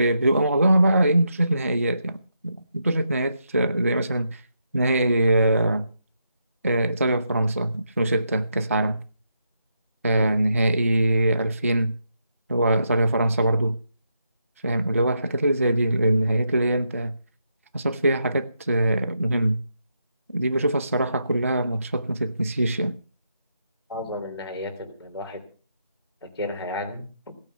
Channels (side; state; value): both; inverted; correlation -0.81